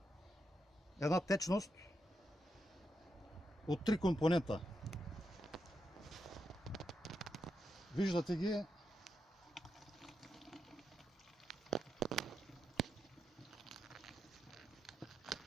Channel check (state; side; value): normal; both; correlation 0.84